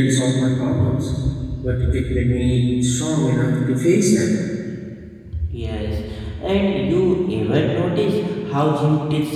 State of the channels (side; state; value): both; identical; correlation 1.00